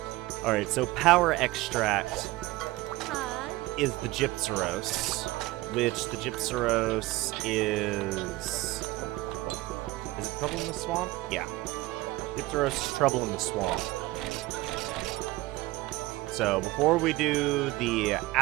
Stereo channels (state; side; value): quieter; left; 19.3 dB